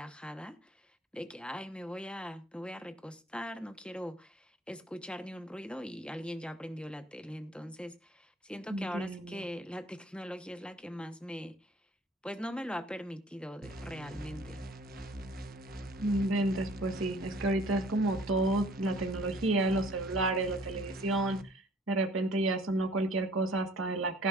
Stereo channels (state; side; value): normal; both; correlation 0.54